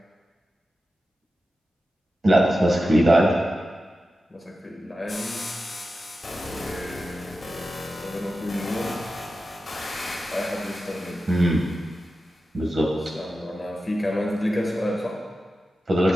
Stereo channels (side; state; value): both; normal; correlation 0.92